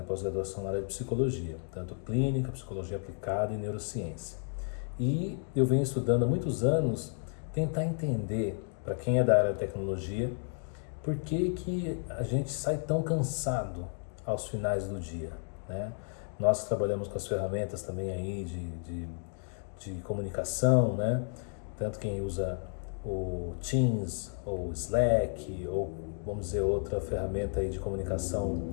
pós-graduação na área de psicologia, tanto clínica, psicologia aplicada e neurociência. E eu venho estudando há muitos anos tentar entender, para quem é da área de tecnologia, por que que a gente sai tão cansado aos finais do dia, né? Nós trabalhamos com as ferramentas também aí de comunicação, né? Tanto quem usa o Teams ou Slack ou vamos dizer outra ferramenta aí de comunicação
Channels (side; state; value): right; silent; 56 dB below the other